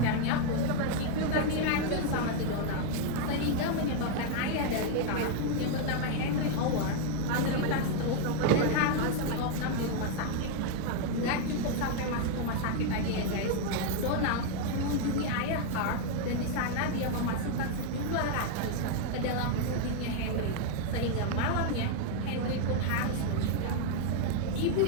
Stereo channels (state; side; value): different; both; correlation 0.00